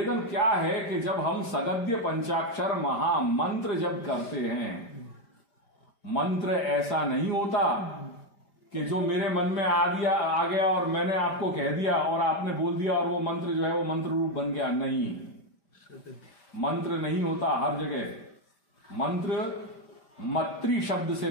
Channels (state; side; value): late; right; 5.1 ms